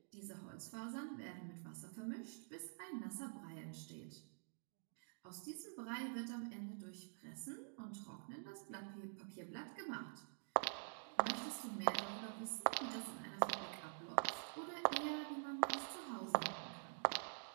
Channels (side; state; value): left; silent; digital silence